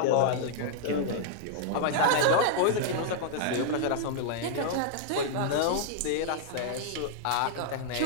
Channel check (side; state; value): both; different; correlation -0.01